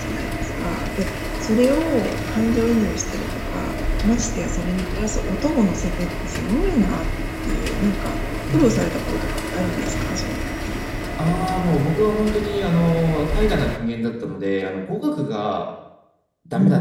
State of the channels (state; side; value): identical; both; correlation 1.00